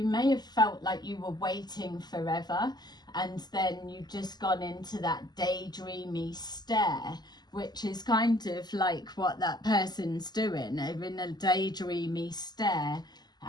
may have felt like you were waiting forever, and then you've just gone into that daydreamy stare, which is kind of like what that person's doing. They're in a daydreamy stare,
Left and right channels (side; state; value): right; late; 0.20 ms